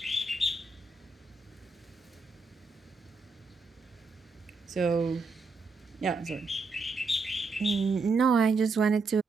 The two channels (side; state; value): left; quieter; 3.8 dB